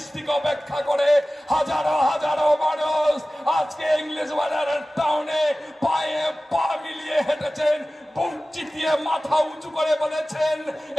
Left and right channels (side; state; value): both; normal; correlation 0.96